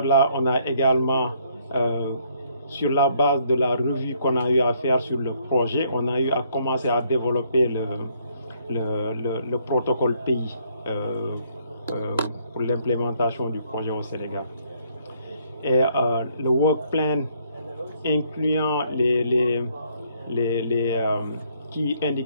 on a également, sur la base de la revue qu'on a eu à faire sur le projet, on a eu à commencer à développer le protocole pays pour l'implémentation du projet au Sénégal. Et le work plan incluant les key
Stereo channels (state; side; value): inverted; both; correlation -0.68